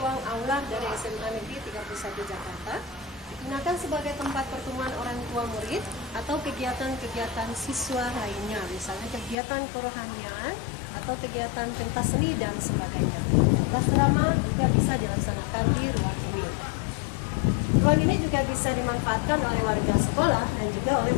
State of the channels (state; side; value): drops out; right; at 9.3 s